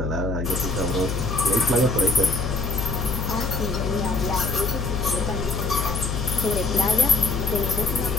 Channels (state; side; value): noise; left; hum, 2 dB below the sound